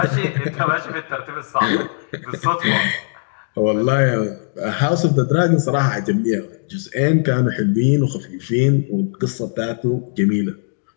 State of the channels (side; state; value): right; silent; digital silence